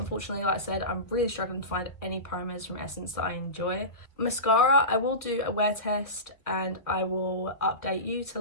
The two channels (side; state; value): right; late; 1.7 ms